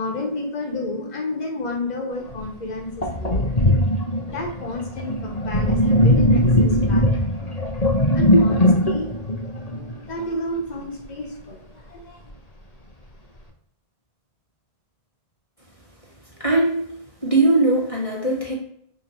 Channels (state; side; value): late; right; 1.6 ms